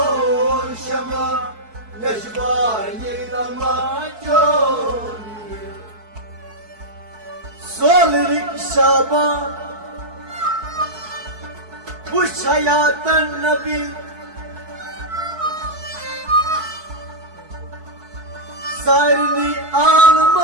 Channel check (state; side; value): late; left; 4.6 ms